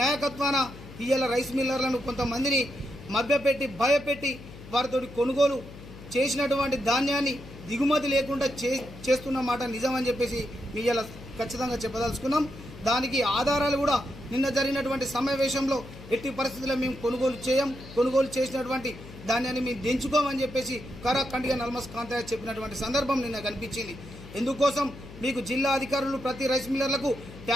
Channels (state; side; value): noise; left; hum, 16 dB below the sound